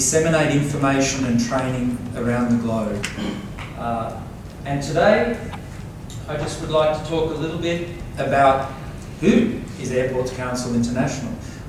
information and training around the globe. And today, I just would like to talk a little bit about who is Airports Council International.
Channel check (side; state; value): both; identical; correlation 1.00